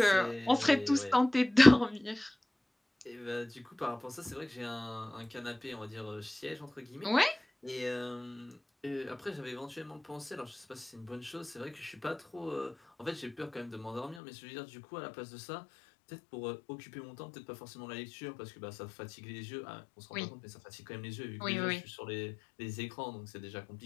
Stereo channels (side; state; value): right; drops out; at 14.2 s